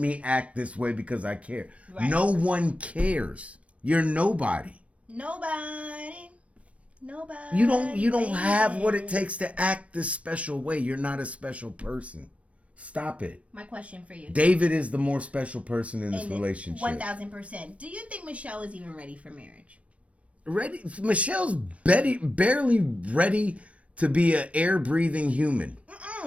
act this way because I care. Right. No one cares. You're nobody. Nobody. You don't have what it takes to act this special way. You're not a special person. Stop it. My question for you. David is the more special person in this relationship. 1,000%. Do you think Michelle is even ready for marriage? Ready? Michelle's barely ready to be an air-breathing human.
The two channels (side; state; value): left; late; 0.064 ms